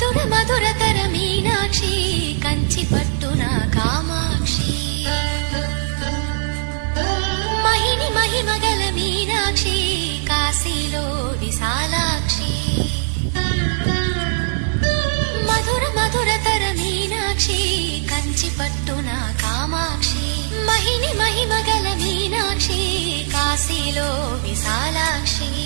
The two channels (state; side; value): silent; left; digital silence